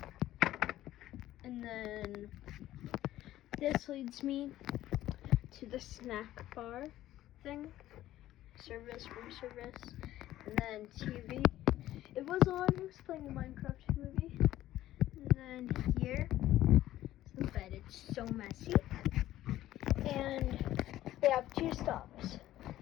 And then this leads me to the snack bar thing. Room service, and then TV. It was on. I was playing a Minecraft movie. And then here is the bed. It's so messy. And they have 2 stops:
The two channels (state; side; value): quieter; right; 14.1 dB